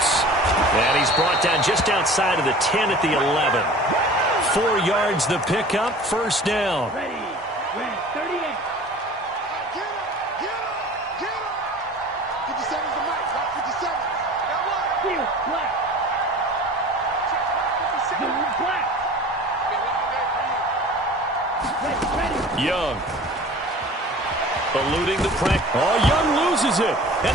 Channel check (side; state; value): both; normal; correlation 0.43